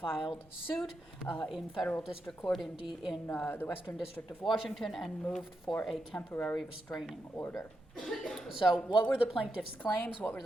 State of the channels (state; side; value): normal; both; correlation 0.85